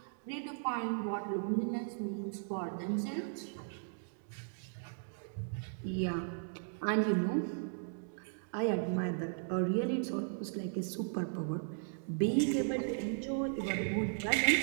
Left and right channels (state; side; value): silent; left; digital silence